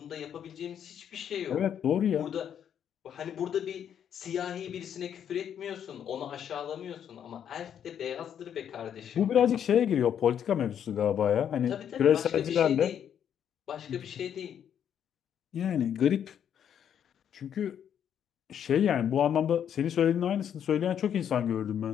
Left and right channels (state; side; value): quieter; right; 9.0 dB